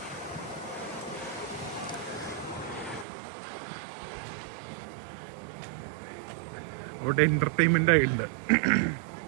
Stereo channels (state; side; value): drops out; left; at 3.1 s